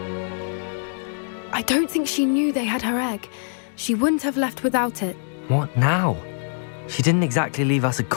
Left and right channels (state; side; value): silent; right; digital silence